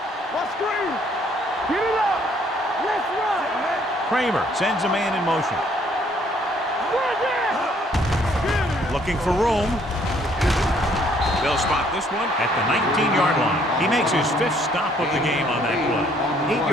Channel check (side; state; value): both; normal; correlation 0.64